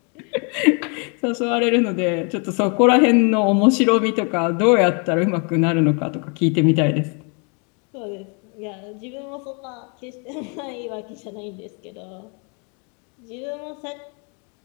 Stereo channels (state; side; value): quieter; right; 35.8 dB